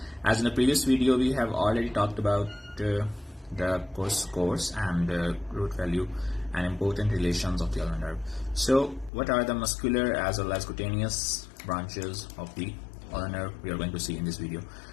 As in the previous video we have already talked about the course and the root value and important relations of the ulnar nerve. So what are the muscular as well as cutaneous branches of the ulnar nerve we are going to see in this video.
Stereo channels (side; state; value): right; drops out; at 9.1 s